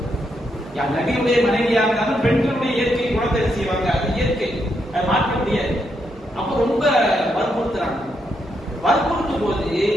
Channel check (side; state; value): both; normal; correlation 0.80